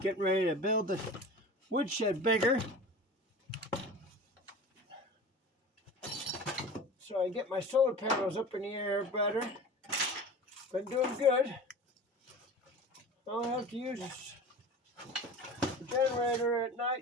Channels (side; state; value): both; normal; correlation 0.36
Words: ready to build the woodshed bigger, so I get my solar panels up in the air better. Been doing good. I'll have to use the generator at